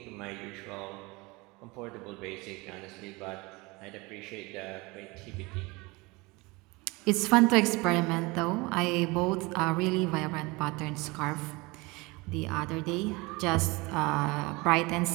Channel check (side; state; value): left; quieter; 24.6 dB